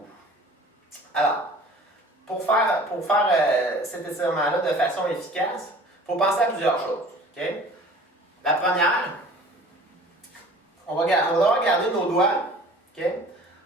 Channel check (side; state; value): both; normal; correlation 0.47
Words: Alors, pour faire cet étirement-là de façon efficace, il faut penser à plusieurs choses. Okay? La première, on va devoir garder nos doigts